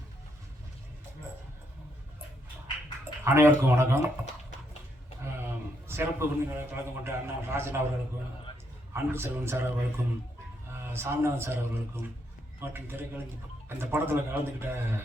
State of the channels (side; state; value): both; normal; correlation 0.76